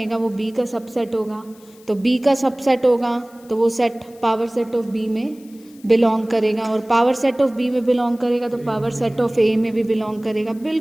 वो बी का सबसेट होगा, तो बी का सबसेट होगा तो वो set power set of B में बिलोंग करेगा, और पावर सेट ऑफ बी में बिलोंग करेगा तो पावर सेट ऑफ ए में भी बिलोंग करेगा,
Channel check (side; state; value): left; noise; hiss, 27 dB below the sound